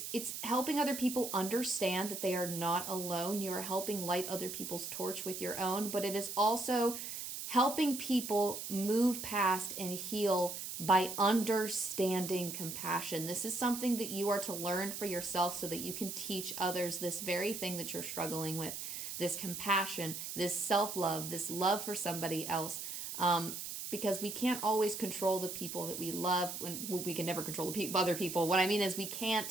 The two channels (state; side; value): noise; right; hiss, 6 dB below the sound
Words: helping other people understand that they are not alone. You are helping light other people's torch with your own, but it is also helping people move past and heal by understanding compassion. This is something that you are to learn for yourself so that you can teach others this very thing that you're struggling with, this compassion, this self-love, this love for somebody else. Because we can't always control the people that we love. When we can never control the other people. What I mean is we